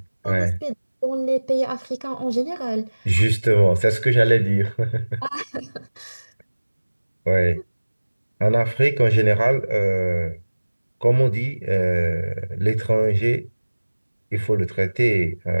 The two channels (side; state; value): both; inverted; correlation -1.00